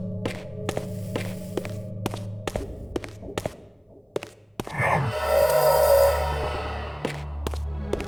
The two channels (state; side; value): identical; both; correlation 1.00